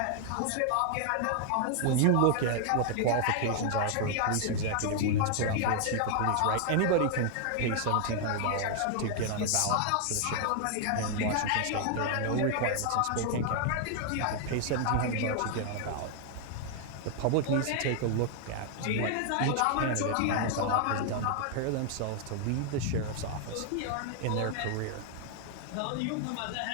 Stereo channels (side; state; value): both; different; correlation 0.00